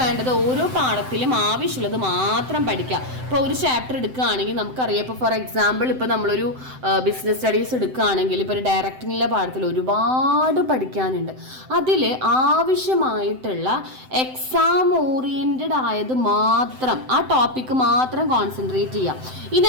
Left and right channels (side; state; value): left; late; 7.8 ms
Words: ഓരോ പാഠത്തിലും ആവശ്യമുള്ളത് മാത്രം പഠിക്കുക. ഇപ്പോൾ ഒരു ചാപ്റ്റർ എടുക്കുകയാണെങ്കിൽ നമുക്കറിയാം, ഇപ്പോൾ ഫോർ എക്സാമ്പിൾ ഇപ്പോൾ നമ്മളൊരു ബിസിനസ് സ്റ്റഡീസ് എടുക്കുകയാണെങ്കിൽ ഇപ്പോൾ ഒരു ഡയറക്റ്റിങ്ങിലെ പാഠത്തിൽ ഒരുപാട് പഠിക്കാനുണ്ട്. അതിൽ ആവശ്യമായിട്ടുള്ള എക്സാം ഓറിയൻറ്റഡ് ആയത് മാത്രം, ആ ടോപ്പിക്ക് മാത്രം കോൺസെൻട്രേറ്റ് ചെയ്യുക. ഇനി